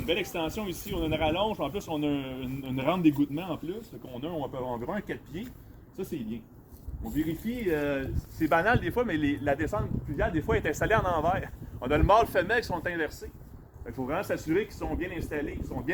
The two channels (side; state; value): both; identical; correlation 1.00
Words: belle extension ici, on a une rallonge, en plus on a une rampe d'égouttement en plus, donc on a environ un 4 pieds. Ça, c'est bien. On vérifie, c'est banal des fois, mais la descente pluviale, des fois, est installée en envers. On a le mâle femelle qui sont inversés. Il faut vraiment s'assurer qu'ils sont bien installés, qu'ils sont